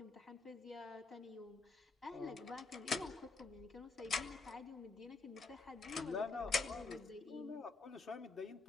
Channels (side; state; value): right; quieter; 3.8 dB